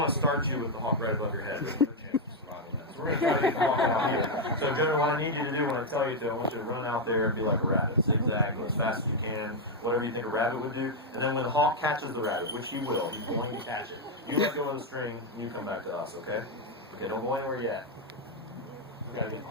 to start you with the hawk right above your head. There's no chance of survival in that. So we're going to try to get the hawk out here. So Jonah, what I need you to do when I tell you to, I want you to run out there and be like a rabbit. Zigzag, go as fast as you can, whatever you think a rabbit would do. And then when the hawk catches the rabbit, which he will, he's going to catch it. You let go of the string, and you come back to us, okay? Okay, don't go anywhere yet. We got to get the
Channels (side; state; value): both; normal; correlation 0.01